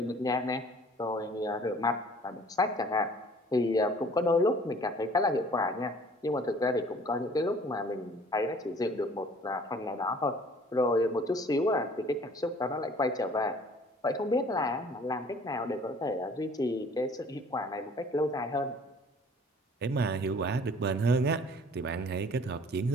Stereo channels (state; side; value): normal; both; correlation 0.52